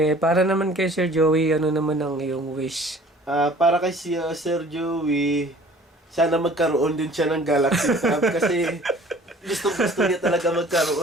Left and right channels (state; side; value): normal; both; correlation 0.50